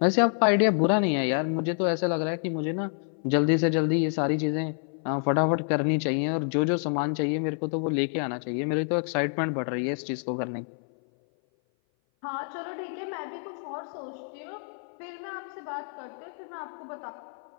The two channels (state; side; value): silent; right; 57 dB below the other